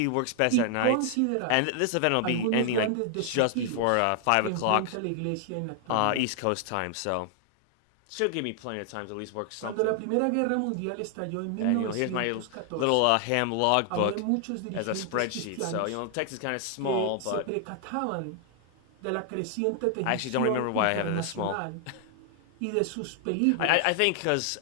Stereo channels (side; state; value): both; different; correlation 0.00